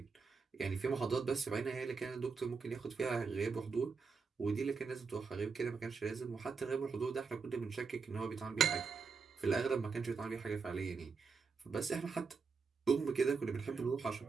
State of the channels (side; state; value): left; quieter; 5.1 dB